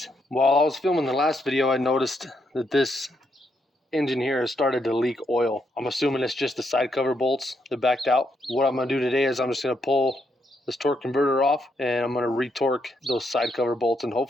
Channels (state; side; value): normal; both; correlation 0.78